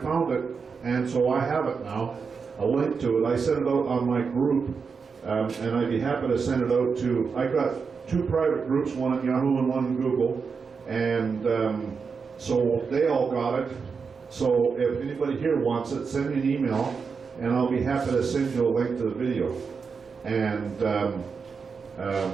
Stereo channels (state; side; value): quieter; left; 5.4 dB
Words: it, and so I have it now, a link to it. I sent it out on my group, and I'd be happy to send it out to, I got 2 private groups, one at Yahoo and one in Google, and so they all got it. So if anybody here wants it, send me an email, and I'll be happy to send you a link to the video. And